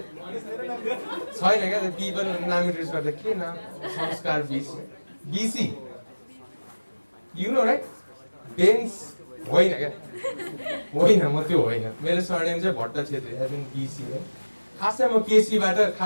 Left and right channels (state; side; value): inverted; both; correlation -1.00